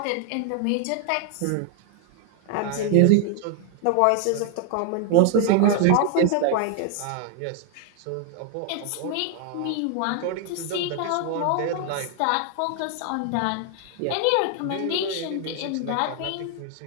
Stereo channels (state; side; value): different; both; correlation 0.00